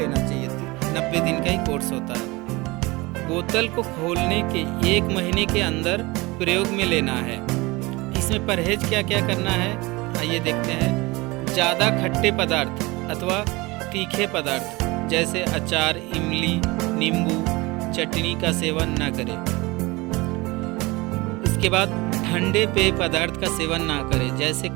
चाहिए। 90 दिन का ही कोर्स होता है। बोतल को खोलने के 1 महीने के अंदर प्रयोग में लेना है। इसमें परहेज क्या क्या करना है आइए देखते हैं। ज़्यादा खट्टे पदार्थ अथवा तीखे पदार्थ जैसे अचार, इमली, नींबू, चटनी का सेवन न करें। इसके बाद ठंडे पेय पदार्थ का सेवन ना करें, जैसे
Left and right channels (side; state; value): left; quieter; 23.1 dB